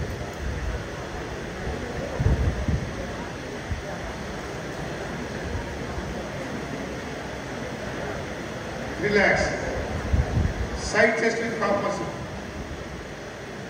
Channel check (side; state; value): both; identical; correlation 1.00